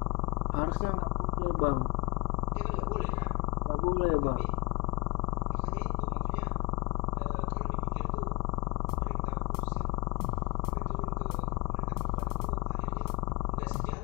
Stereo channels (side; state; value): right; quieter; 24.5 dB